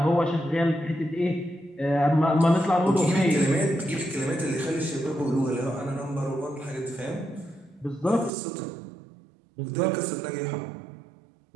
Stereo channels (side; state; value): left; drops out; at 8.3 s